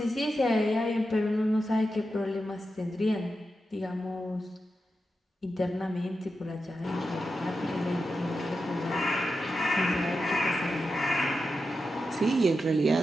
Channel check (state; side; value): normal; both; correlation 0.89